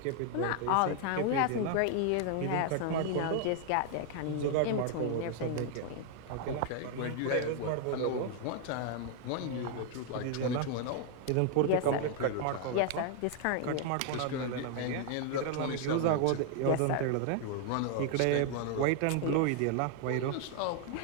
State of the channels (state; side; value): different; both; correlation 0.00